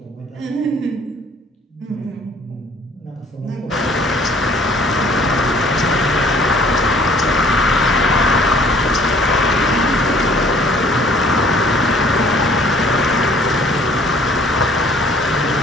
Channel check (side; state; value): both; normal; correlation 0.56